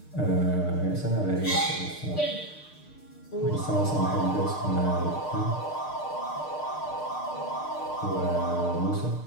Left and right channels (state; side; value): late; right; 6.6 ms